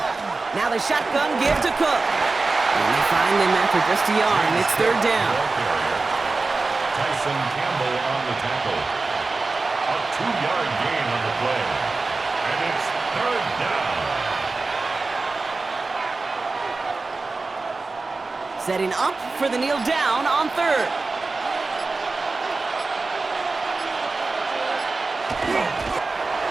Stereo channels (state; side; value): quieter; left; 3.7 dB